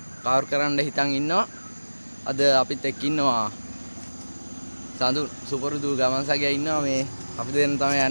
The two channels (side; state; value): both; inverted; correlation -1.00